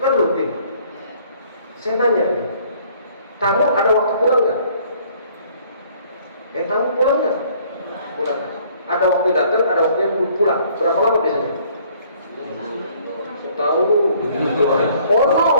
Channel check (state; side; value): inverted; both; correlation -0.59